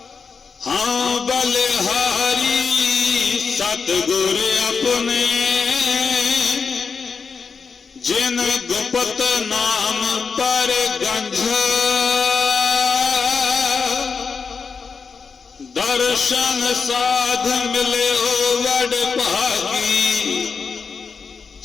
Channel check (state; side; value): quieter; right; 5.4 dB